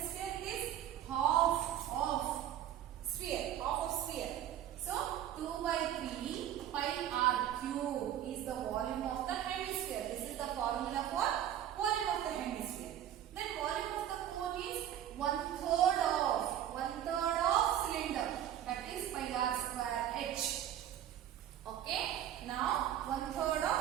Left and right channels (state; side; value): quieter; left; 11.2 dB